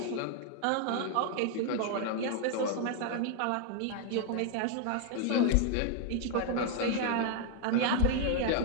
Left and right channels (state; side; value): different; both; correlation 0.00